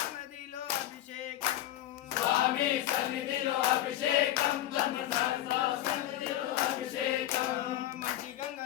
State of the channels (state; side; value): quieter; right; 13.8 dB